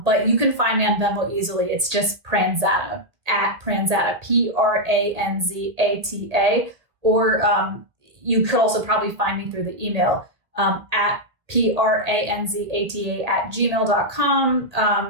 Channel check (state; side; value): late; left; 1.6 ms